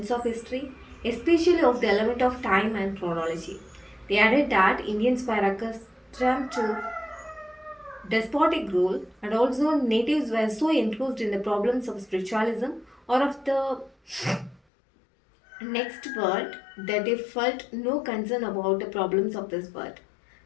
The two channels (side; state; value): right; drops out; at 14.6 s